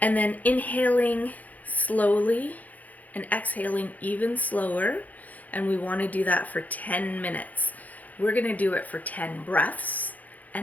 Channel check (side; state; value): right; late; 0.079 ms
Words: And then inhaling slowly and exhaling even slower. And we want to do that for 10 minutes. We're going to do it for 10 breaths.